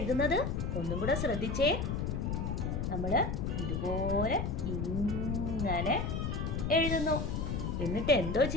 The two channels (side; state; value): left; noise; rumble, 1 dB below the sound